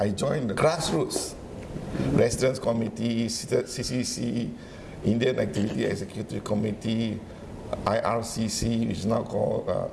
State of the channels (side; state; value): both; identical; correlation 1.00